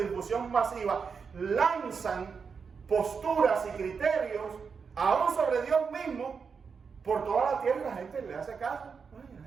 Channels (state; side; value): quieter; left; 5.7 dB